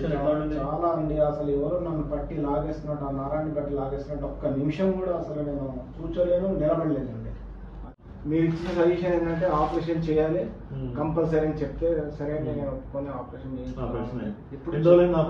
ఎట్లా ఉండింది? చాలా అండి, అసలు ఎవరు నన్ను పట్టి లాగేస్తున్నట్టు, ఆ నరాన్ని బట్టి లాగేస్తున్నట్టు ఒక్క నిమిషం కూడా అసలు నేను కూర్చోలేను, నిలబడలేదండి. మీరు ఇచ్చిన సజెషన్ ఏంటంటే ఆపరేషన్ చేయాలి కంపల్సరీ అని చెప్తే సరే నేను కొన్ని ఆపరేషన్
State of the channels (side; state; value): both; identical; correlation 1.00